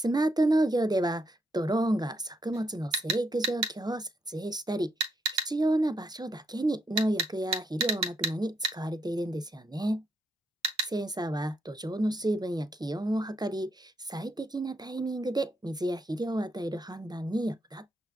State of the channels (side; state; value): both; normal; correlation 0.78